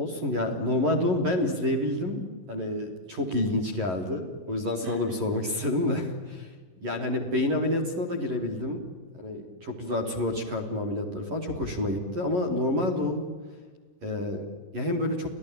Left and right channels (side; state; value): left; late; 11 ms